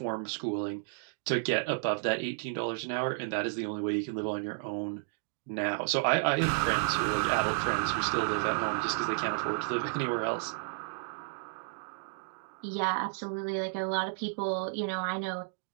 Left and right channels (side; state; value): left; silent; digital silence